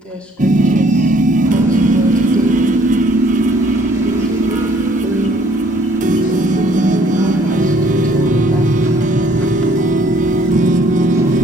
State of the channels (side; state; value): both; normal; correlation 0.60